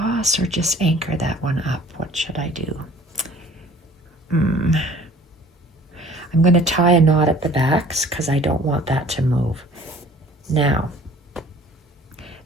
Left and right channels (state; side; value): normal; both; correlation 0.51